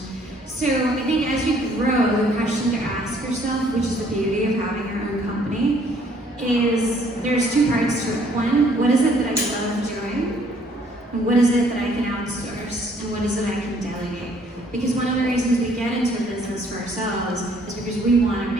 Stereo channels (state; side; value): normal; both; correlation 0.62